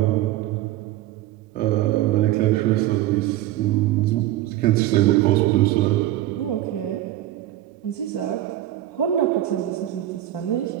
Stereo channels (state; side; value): quieter; left; 14.3 dB